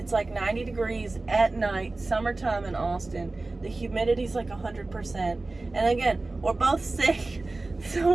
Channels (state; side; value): quieter; left; 3.2 dB